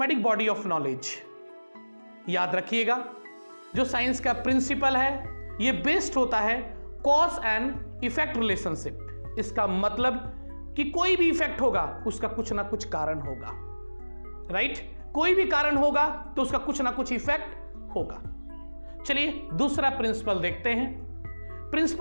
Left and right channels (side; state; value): both; inverted; correlation -1.00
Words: body of knowledge. याद रखिएगा जो साइंस का प्रिंसिपल है ये बेस्ड होता है कॉज एंड इफेक्ट रिलेशनशिप। इसका मतलब कि कोई भी इफेक्ट होगा उसका कुछ ना कुछ कारण होगा, राइट? कोई भी कारण होगा तो उसका कुछ ना कुछ इफेक्ट होगा। चलिए दूसरा प्रिंसिपल देखते हैं।